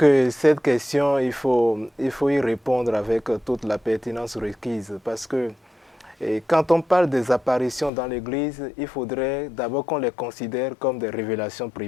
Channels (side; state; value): right; drops out; at 7.9 s